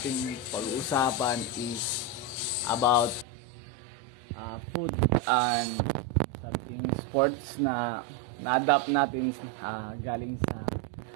pag-uusapan is about food and something sports na na-adapt natin galing sa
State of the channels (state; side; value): drops out; left; at 3.2 s